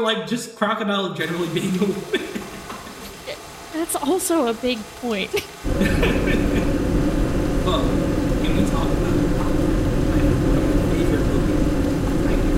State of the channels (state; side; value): identical; both; correlation 1.00